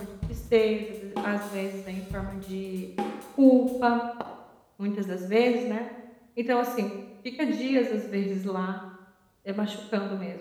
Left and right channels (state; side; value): identical; both; correlation 1.00